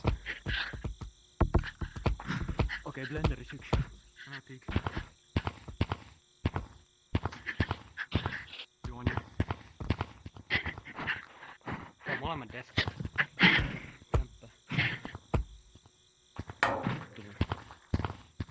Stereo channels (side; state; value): both; identical; correlation 1.00